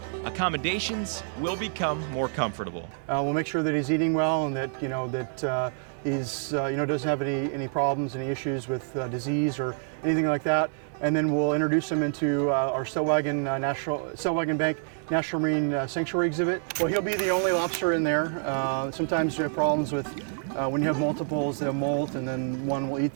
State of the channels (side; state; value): left; silent; digital silence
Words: accommodations will become more comfortable. We'll make sure that he's eating well, and that he's doesn't have any problems, any issues with disease or anything like that. And then we'll introduce him into our Stellwagen Bank National Marine Sanctuary exhibit. Well, he'll be the only lobster in there. Sometimes you have problems with when you have multiples, they'll molt, and then one will eat